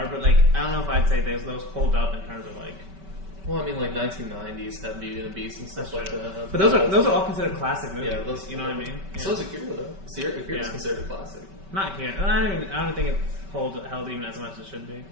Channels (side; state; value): left; late; 5.2 ms